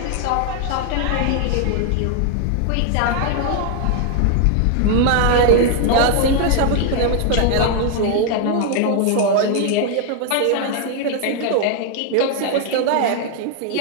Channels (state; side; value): different; both; correlation 0.00